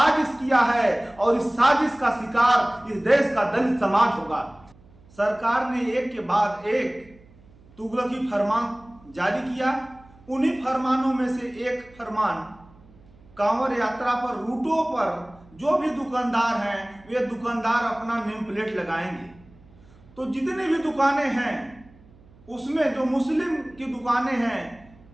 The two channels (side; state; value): right; noise; hum, 26 dB below the sound